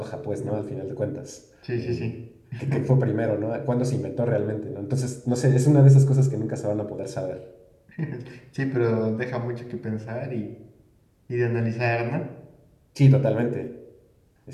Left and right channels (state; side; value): identical; both; correlation 1.00